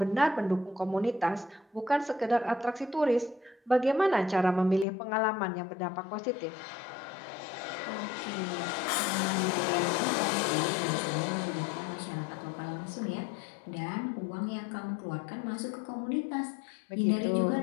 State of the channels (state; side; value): drops out; right; at 4.9 s